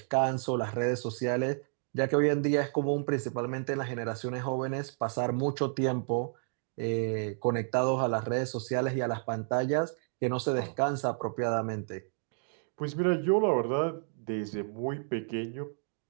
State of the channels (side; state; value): left; silent; 57 dB below the other